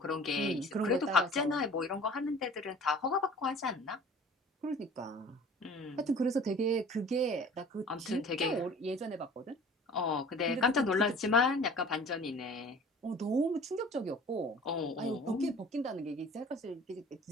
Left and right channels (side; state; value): both; normal; correlation 0.46